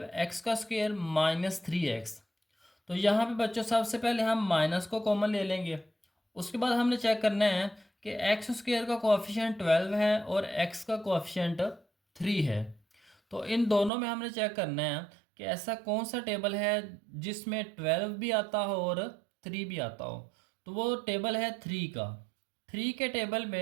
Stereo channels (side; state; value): left; drops out; at 13.9 s